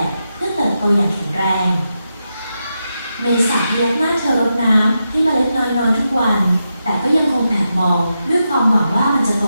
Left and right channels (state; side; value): inverted; both; correlation -0.87